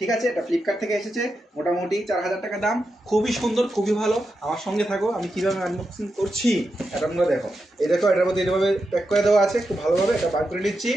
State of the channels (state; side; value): normal; both; correlation 0.87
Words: আছে, এটা ফ্লিপকার্ট থেকে এসেছে, মোটামুটি 4000 টাকা দাম। খুবই সুন্দর, খুবই ভালো। আমার সঙ্গে থাকো, আমি কীভাবে আনবক্সিং করছি এটা তোমরা দেখো। এই দেখো, এটার মধ্যে এইভাবে প্যাক করে দেওয়া আছে, খুব ভালোভাবে এটা বার করে নিচ্ছি।